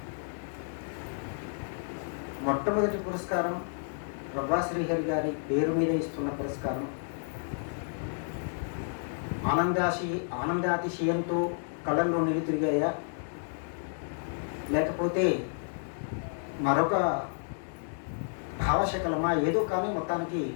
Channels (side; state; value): right; silent; 57 dB below the other